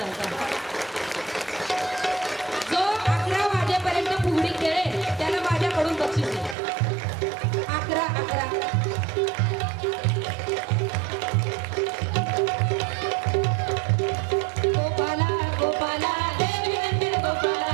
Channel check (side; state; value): left; drops out; at 6.6 s